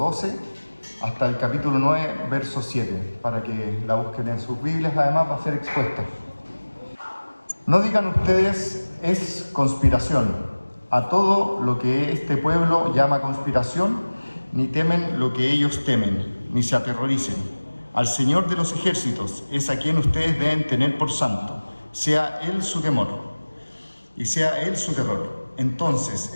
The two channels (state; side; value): inverted; both; correlation -1.00